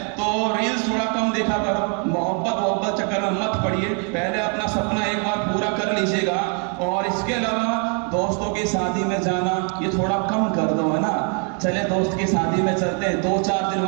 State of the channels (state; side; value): quieter; left; 39.4 dB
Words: तो रील्स थोड़ा कम देखा करो, मोहब्बत चक्कर में मत पड़िए, पहले अपना सपना एक बार पूरा कर लीजिएगा। और इसके अलावा दोस्तों की शादी में जाना ये थोड़ा कम कर दो, है ना। चले दोस्त की शादी में चलते हैं, 2-4 दिन